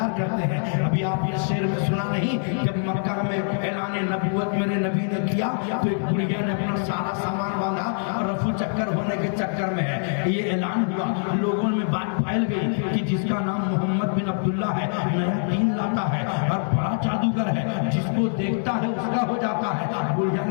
کرتے ہیں. ابھی آپ یہ شعر میں سنا نہیں, جب مکہ میں اعلان نبوت میرے نبی نے کیا تو ایک بڑھیا نے اپنا سارا سامان باندھا اور رفو چکر ہونے کے چکر میں ہے. یہ اعلان ہوا, لوگوں میں بات پھیل گئی کہ جس کا نام محمد بن عبداللہ ہے نیا دین لاتا ہے اور بڑا جادوگر ہے, جس کو دیکھتا ہے اس کا ہو جاتا ہے. بڑھیا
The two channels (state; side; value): silent; right; digital silence